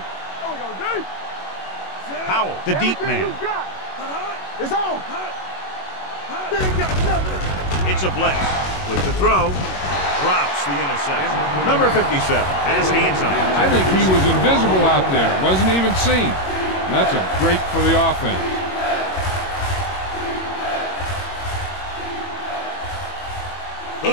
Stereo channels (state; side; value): late; right; 21 ms